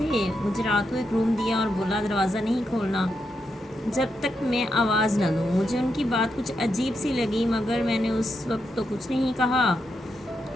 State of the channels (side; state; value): both; normal; correlation 0.84